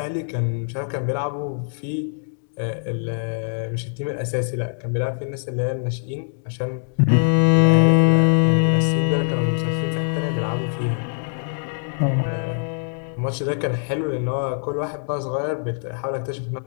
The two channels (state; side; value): silent; right; digital silence